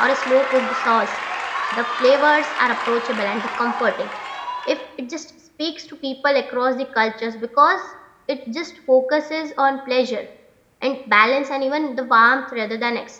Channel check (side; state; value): both; identical; correlation 1.00